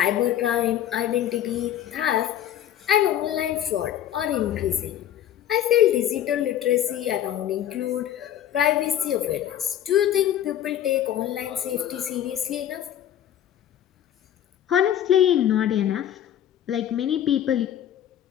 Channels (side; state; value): right; quieter; 11.0 dB